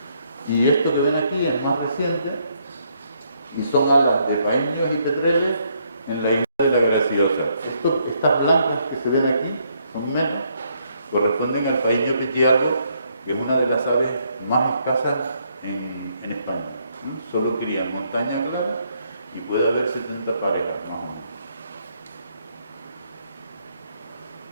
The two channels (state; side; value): inverted; both; correlation -0.72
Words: Y esto que ven aquí es más reciente y son alas de paíños y petreles en la isla de la Graciosa. Estas blancas que se ven aquí son menos, corresponden al paíño petiago, que es una de las aves más escasas en España. Solo cría en montaña clara y puede haber 70 parejas, más o menos.